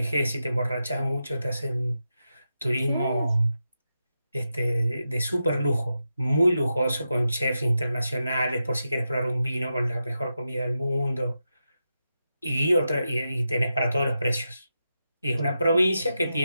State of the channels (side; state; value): both; inverted; correlation -0.88